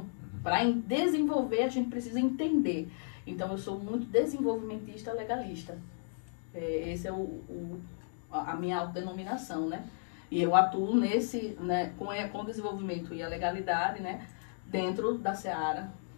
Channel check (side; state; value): right; silent; digital silence